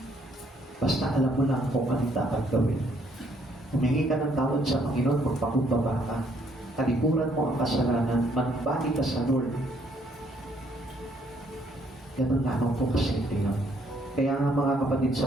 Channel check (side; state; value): both; normal; correlation 0.68